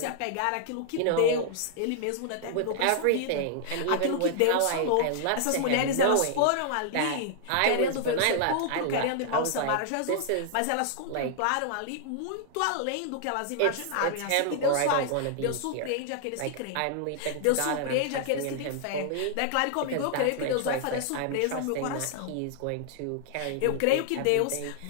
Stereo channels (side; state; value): both; different; correlation -0.01